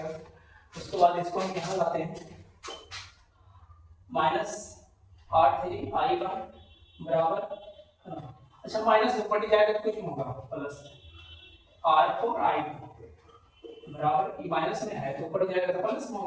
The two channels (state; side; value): identical; both; correlation 1.00